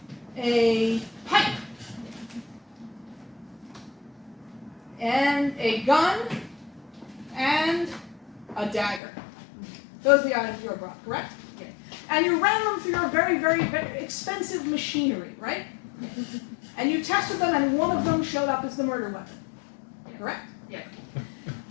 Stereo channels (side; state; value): right; drops out; at 9.0 s